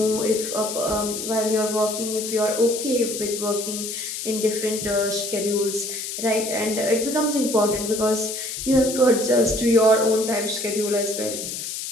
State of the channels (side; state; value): left; noise; hiss, 6 dB below the sound